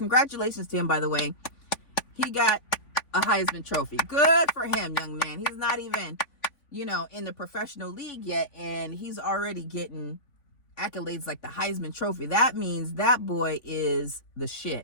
to him, by the way. He got a Heisman Trophy. Good for him, young man. He's not even, you know, in the professional league yet, and he's already getting accolades like the Heisman Trophy. That means that boy is the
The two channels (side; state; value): right; late; 3.5 ms